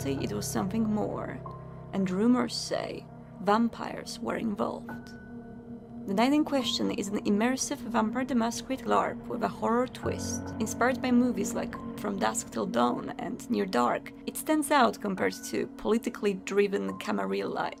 it was something more, and rumors say vampires were involved. The Night in Question is an immersive Vampire the Masquerade LARP with a horror twist. Inspired by movies like From Dusk Till Dawn and Near Dark, it stands out compared to politically driven Camarilla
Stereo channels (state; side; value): identical; both; correlation 1.00